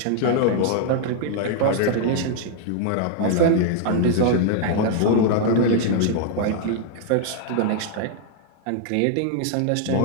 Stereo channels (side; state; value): both; different; correlation 0.00